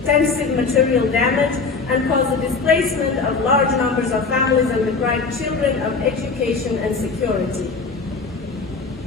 material damage and caused the displacement of large numbers of families and deprived children of education and security.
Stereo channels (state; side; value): quieter; right; 4.5 dB